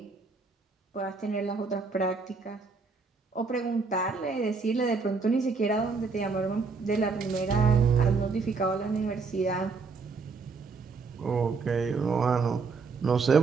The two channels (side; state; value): left; quieter; 4.6 dB